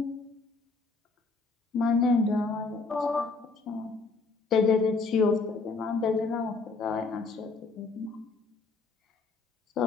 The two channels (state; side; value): quieter; right; 4.1 dB